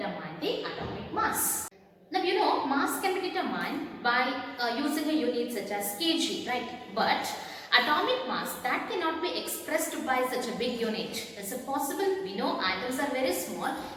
the atomic mass. Now you know, mass can be determined by using a unit such as kg, right? But atomic mass, that cannot be expressed by such a big unit. Is it possible? We know atoms are very small.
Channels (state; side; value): identical; both; correlation 1.00